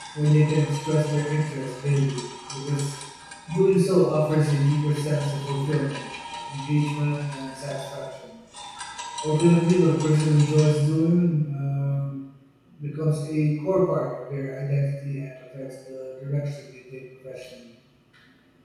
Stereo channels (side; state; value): both; identical; correlation 1.00